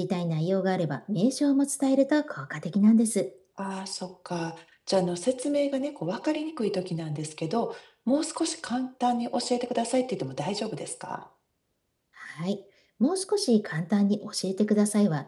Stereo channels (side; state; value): both; identical; correlation 1.00